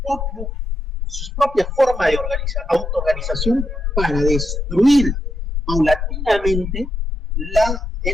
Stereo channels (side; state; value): both; normal; correlation 0.82